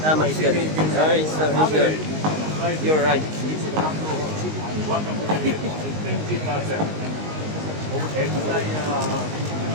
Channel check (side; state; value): left; late; 19 ms